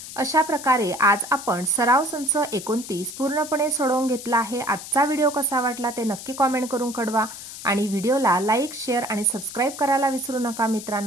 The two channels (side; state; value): left; noise; hiss, 12 dB below the sound